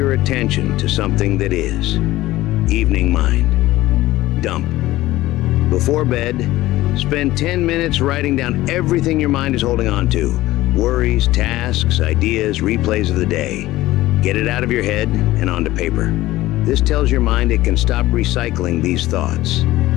attention to something that is. Evening mind. Dump. Before bed, spend 10 minutes writing down everything your mind is holding on to. Worries, tasks, ideas, replays of the day. Get it out of your head and onto paper. This tells your mind it can stop recycling these thoughts.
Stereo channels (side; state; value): right; quieter; 16.8 dB